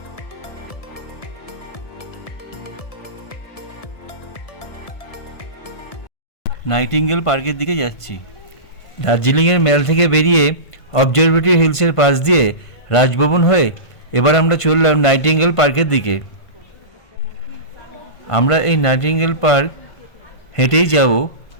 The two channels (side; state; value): right; late; 1.5 ms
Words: নাইটিঙ্গেল পার্কের দিকে যাচ্ছি। দার্জিলিংয়ের ম্যাল থেকে বেরিয়ে অবজারভেটরি হিলসের পাশ দিয়ে রাজভবন হয়ে এবার আমরা চললাম নাইটিঙ্গেল পার্কের দিকে। আমরা এই নাইটিঙ্গেল পার্ক হেঁটেই যাব,